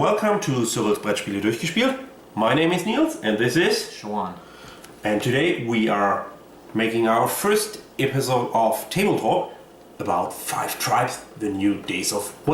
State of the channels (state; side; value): identical; both; correlation 1.00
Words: to Cyrils Brettspiele durchgespielt. My name is Nils and this is Showan. And today we are making our first episode of Tabletop about 5 Tribes, the new Days of